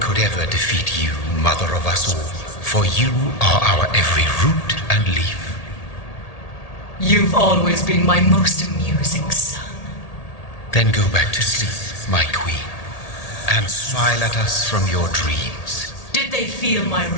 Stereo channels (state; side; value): late; right; 1.8 ms